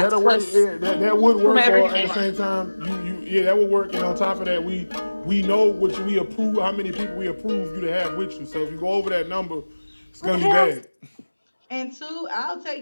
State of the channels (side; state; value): both; inverted; correlation -1.00